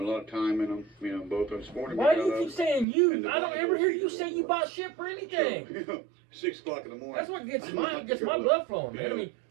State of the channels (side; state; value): left; drops out; at 2.9 s